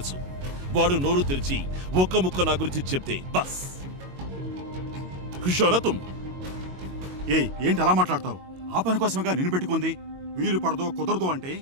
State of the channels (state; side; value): late; left; 22 ms